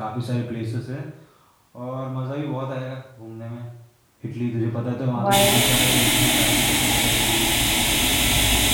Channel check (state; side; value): identical; both; correlation 1.00